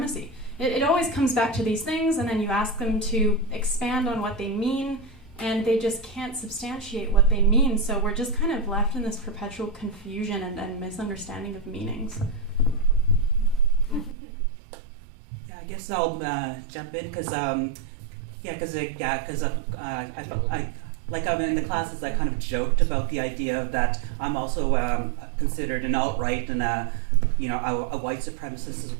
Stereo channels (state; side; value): drops out; left; at 14.2 s